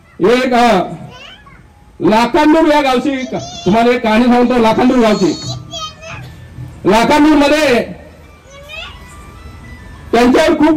एक लाखांदूर या गावची तुम्हाला एक कहाणी सांगतो. लाखांदूर गावची, लाखांदूर मध्ये त्यांच्यावर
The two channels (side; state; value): both; identical; correlation 1.00